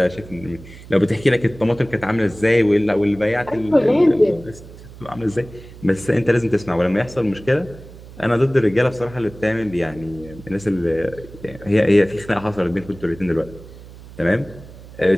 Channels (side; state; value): right; noise; hum, 18 dB below the sound